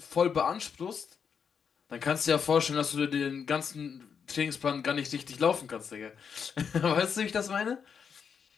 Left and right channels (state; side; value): quieter; right; 6.7 dB